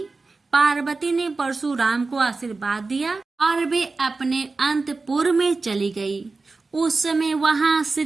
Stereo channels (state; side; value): quieter; left; 3.8 dB